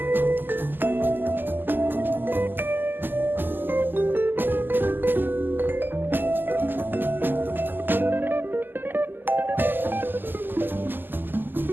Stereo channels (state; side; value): late; left; 0.092 ms